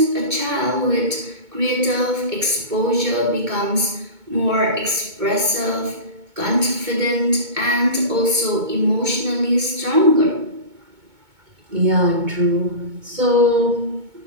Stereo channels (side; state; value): left; late; 2.2 ms